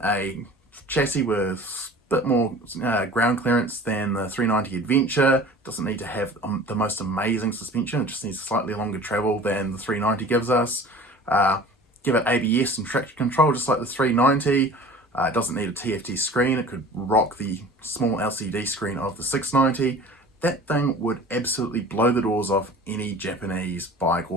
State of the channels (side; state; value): both; normal; correlation 0.42